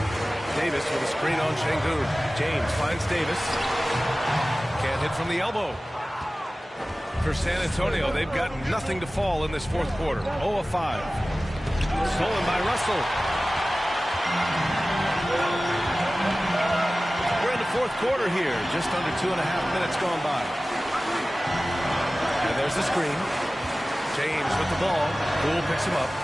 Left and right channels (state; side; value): normal; both; correlation 0.97